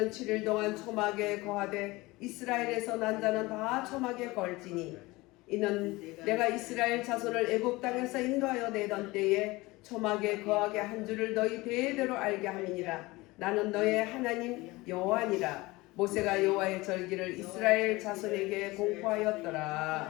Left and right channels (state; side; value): quieter; right; 21.5 dB